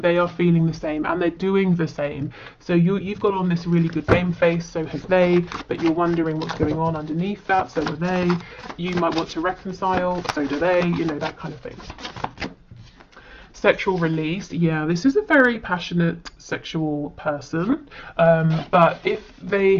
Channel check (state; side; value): identical; both; correlation 1.00